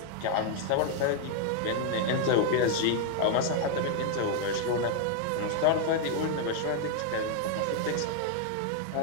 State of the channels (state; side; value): different; both; correlation 0.00